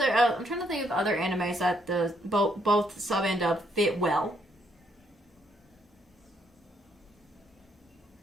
I'm trying to think of other animes that the both sub and dub fit well.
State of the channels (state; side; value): normal; both; correlation 0.72